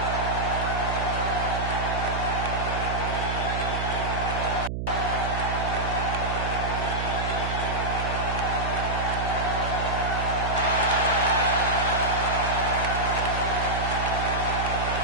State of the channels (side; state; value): right; noise; hum, 3 dB below the sound